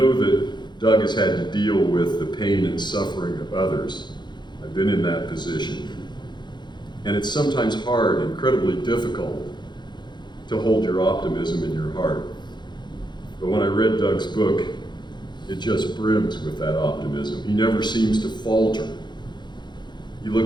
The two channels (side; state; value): right; late; 0.21 ms